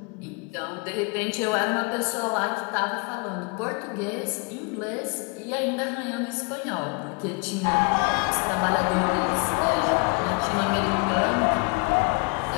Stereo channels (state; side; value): quieter; right; 32.4 dB